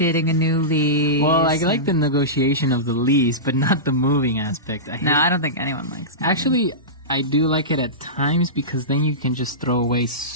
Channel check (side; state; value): both; normal; correlation -0.18